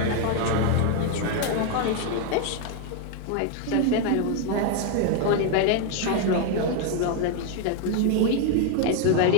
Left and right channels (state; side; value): different; both; correlation 0.01